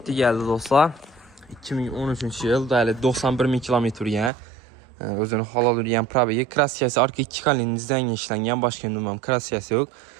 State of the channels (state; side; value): drops out; left; at 4.3 s